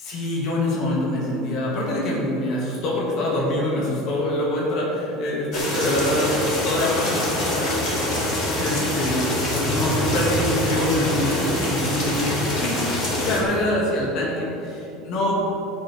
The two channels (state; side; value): normal; both; correlation 0.35